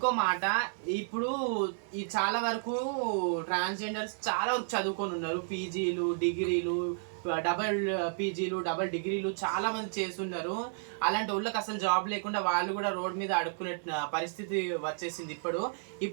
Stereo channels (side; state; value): left; silent; digital silence